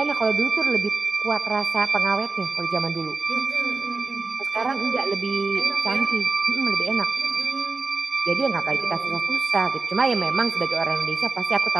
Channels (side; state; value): left; quieter; 3.9 dB